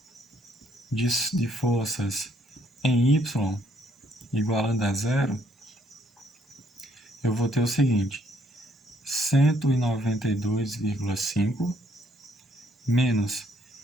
de forças em Y igualando a zero, eu vou ter o seguinte: 192,5 menos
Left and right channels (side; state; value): both; normal; correlation 0.68